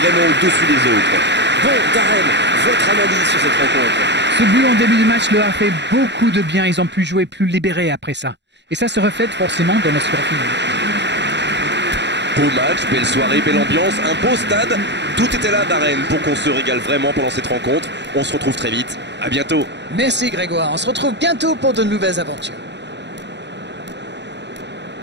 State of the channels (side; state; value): left; late; 0.51 ms